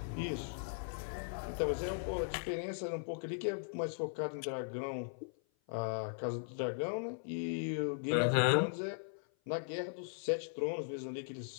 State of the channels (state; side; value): silent; right; 52 dB below the other